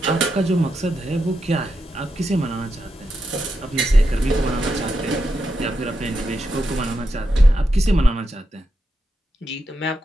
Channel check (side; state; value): both; normal; correlation 0.86